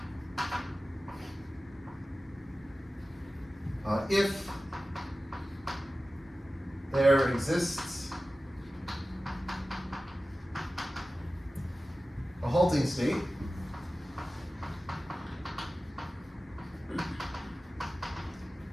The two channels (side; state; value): both; normal; correlation 0.96